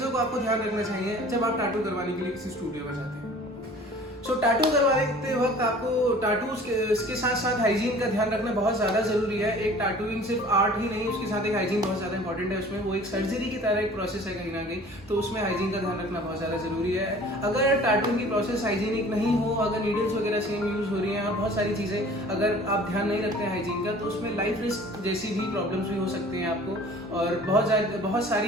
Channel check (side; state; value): both; normal; correlation 0.47